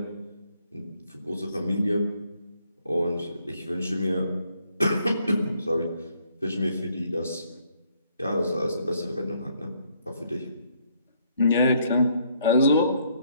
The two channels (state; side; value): inverted; both; correlation -0.69